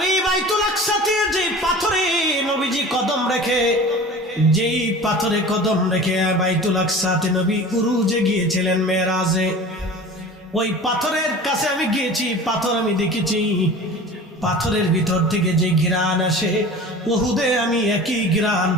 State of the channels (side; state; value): both; normal; correlation 0.38